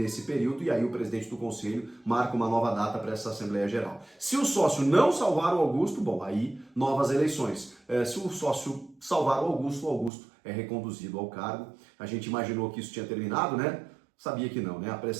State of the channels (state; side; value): drops out; left; at 10.1 s